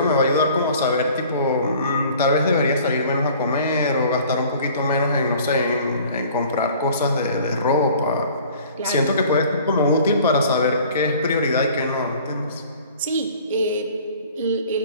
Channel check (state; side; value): inverted; both; correlation -0.50